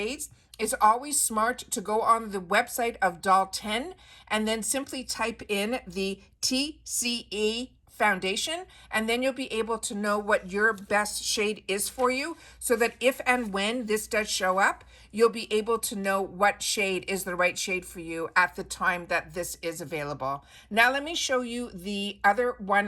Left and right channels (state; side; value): identical; both; correlation 1.00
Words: it's always smart to go on the website of Doll 10 and then simply type in the TCE foundation, and then you'll be able to know what your best shade is for you, so that if and when this does show up, you'll be able to know what shade is the right shade for you at the time that this is available. Now let me show you the other